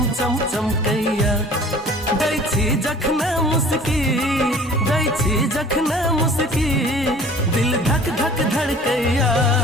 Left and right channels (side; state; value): both; normal; correlation 0.47